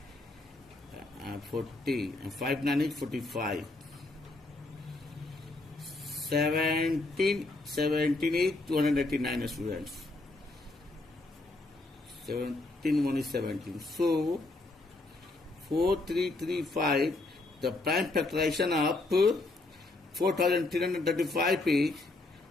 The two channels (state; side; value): quieter; right; 3.0 dB